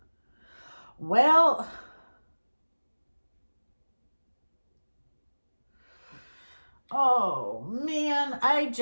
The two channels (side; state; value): both; inverted; correlation -1.00